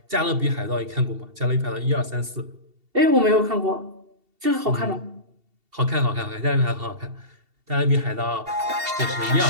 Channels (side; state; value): left; late; 2.7 ms